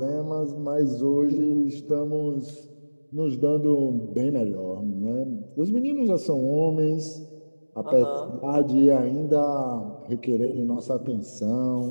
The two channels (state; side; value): inverted; both; correlation -1.00